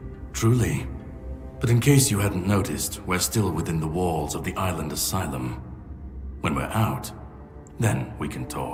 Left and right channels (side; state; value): both; identical; correlation 1.00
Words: truly. But in case you hadn't noticed, we're still within the walls of the island asylum. When we're out, then we can